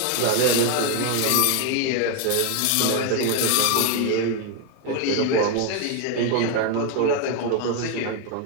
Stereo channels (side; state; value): both; different; correlation 0.01